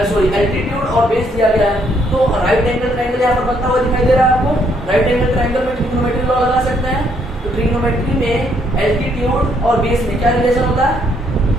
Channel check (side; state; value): both; normal; correlation 0.70